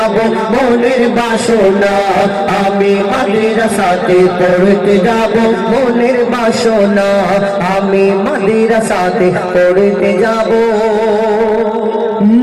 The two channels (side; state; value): both; identical; correlation 1.00